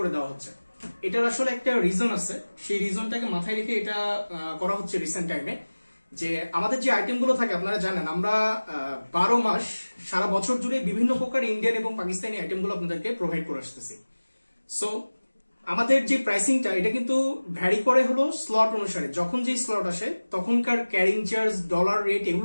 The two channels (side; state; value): both; inverted; correlation -1.00